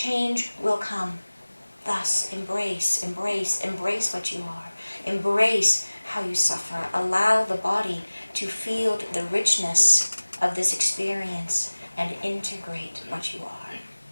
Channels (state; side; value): inverted; both; correlation -1.00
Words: will come. Thus, embrace, embrace, embrace what you are. Embrace how you suffer. Allow the body to feel the richness of this experience and integrate what you are.